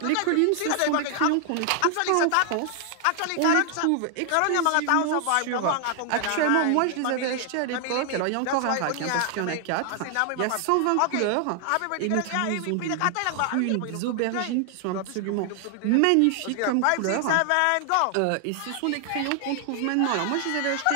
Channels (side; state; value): both; different; correlation 0.00